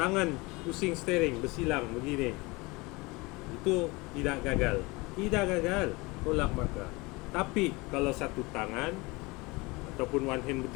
pusing steering, bersilang begini, itu tidak gagal, tolak markah. Tapi kalau satu tangan ataupun one hand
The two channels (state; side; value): quieter; right; 24.4 dB